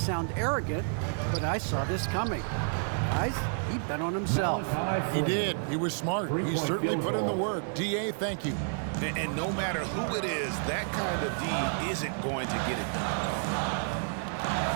arrogant, but I saw this coming. Guys, he bet on himself. He did. He was smart. He certainly put in the work. DA, thank you. And no matter who it is, that kind of D isn't going to get it done.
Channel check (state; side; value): silent; left; 58 dB below the other